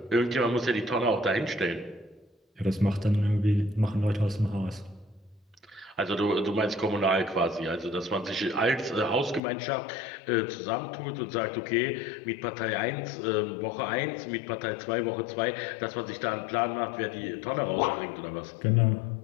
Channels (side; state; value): right; drops out; at 9.4 s